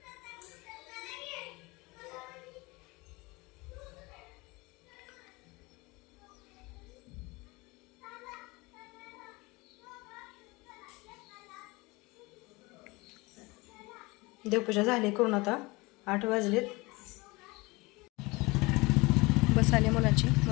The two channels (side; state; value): right; quieter; 24.0 dB